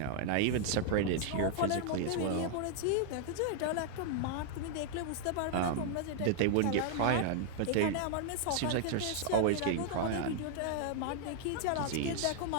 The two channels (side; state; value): both; different; correlation 0.00